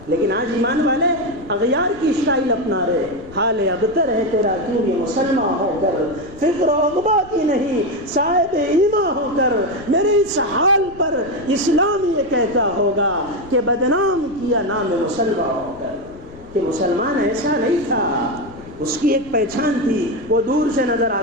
لیکن آج ایمان والے اغیار کی اسٹائل اپنا رہے، حال ابتر ہے تیرا کیوں یہ مسلمان ہو کر، فکر و عقبہ کی نہیں صاحب ایمان ہو کر، میرے اس حال پر اسلام یہ کہتا ہوگا کہ بدنام کیا نام مسلمان ہو کر، کہ مسلمان ایسا نہیں تھا، اس کی ایک پہچان تھی، وہ دور سے نظر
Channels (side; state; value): left; noise; rumble, 20 dB below the sound